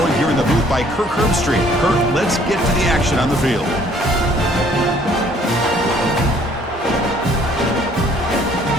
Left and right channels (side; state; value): both; normal; correlation 0.60